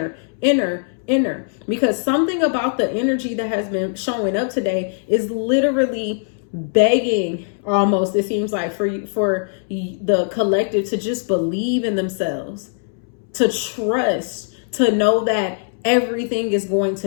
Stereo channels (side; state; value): right; silent; 65 dB below the other